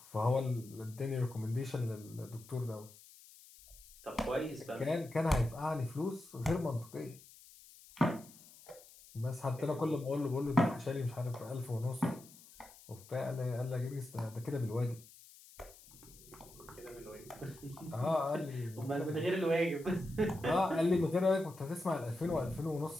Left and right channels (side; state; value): left; noise; hiss, 21 dB below the sound